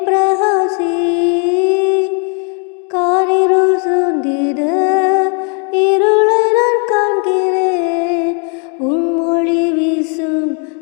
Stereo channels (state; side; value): quieter; right; 38.9 dB